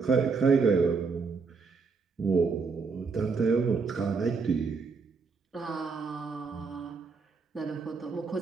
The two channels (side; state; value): left; quieter; 4.8 dB